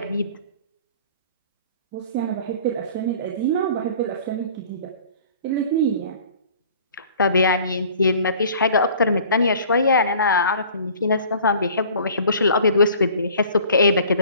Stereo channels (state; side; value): inverted; both; correlation -0.49